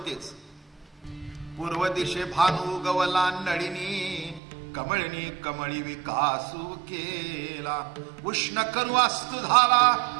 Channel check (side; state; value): left; drops out; at 4.4 s